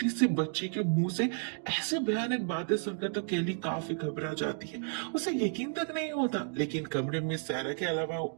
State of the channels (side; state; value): left; silent; 56 dB below the other